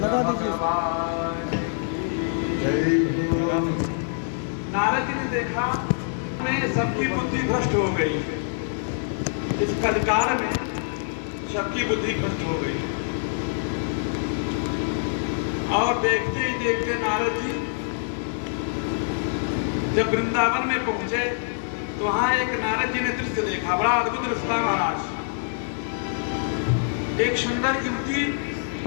दीजिए। नारद जी ने देखा में सबकी बुद्धि भ्रष्ट हो गई, इस कलिकाल में सबकी बुद्धि भ्रष्ट हो गई। और देखते ही देखते नारद जी जब वृंदावन में पहुंचे तो वहां एक नारद जी ने दृश्य देखा, बड़ा अद्भुत दृश्य था महाराज। एक सुंदर युवती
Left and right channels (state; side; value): silent; right; digital silence